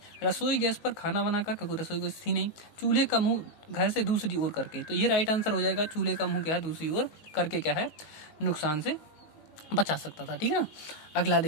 रसोई गैस पर खाना बनाकर, क्योंकि रसोई गैस थी नहीं, चूल्हे का मुंह घर से दूसरी ओर करके। तो ये राइट आंसर हो जाएगा, चूल्हे का मुंह क्या है दूसरी ओर करके क्या है नुकसान से बचा सकता था, ठीक है ना। अगला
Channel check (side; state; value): right; late; 19 ms